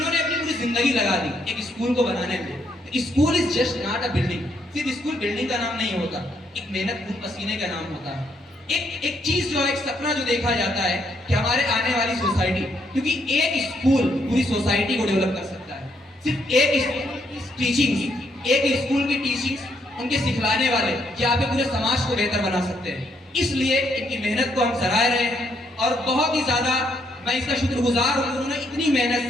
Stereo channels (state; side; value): normal; both; correlation 0.74